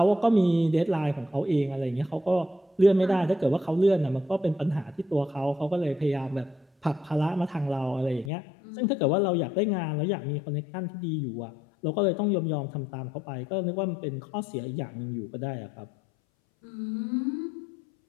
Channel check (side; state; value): right; drops out; at 8.3 s